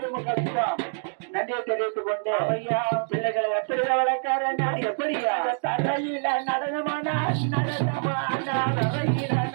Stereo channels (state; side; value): silent; left; digital silence